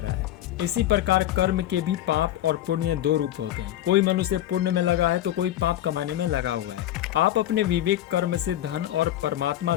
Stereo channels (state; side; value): quieter; right; 13.0 dB